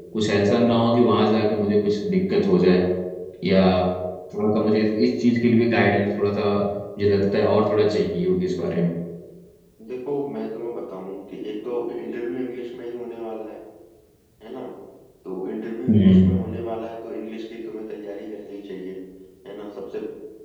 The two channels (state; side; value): identical; both; correlation 1.00